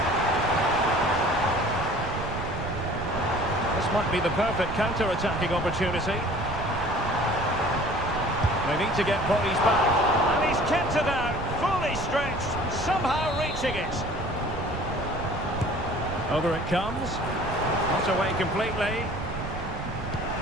This might be the perfect counter-attacking opportunity. They need to get bodies back. And he's kept it out, fully stretched, somehow reaching it. Over it comes. Not away completely.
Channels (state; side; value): noise; right; rumble, 8 dB below the sound